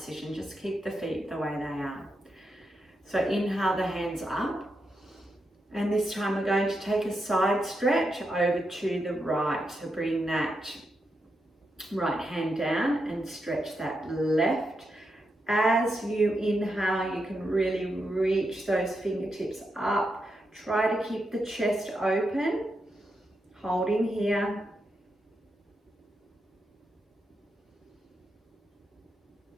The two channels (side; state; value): both; normal; correlation 0.85